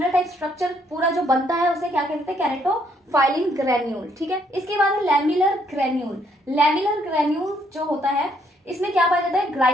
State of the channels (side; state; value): both; normal; correlation 0.69